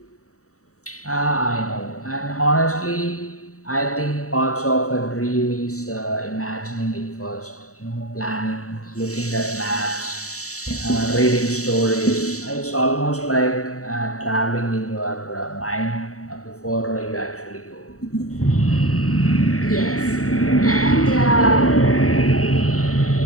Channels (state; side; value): late; right; 0.65 ms